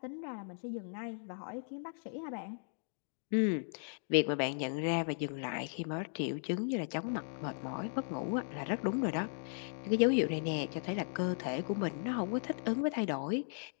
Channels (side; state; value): right; silent; digital silence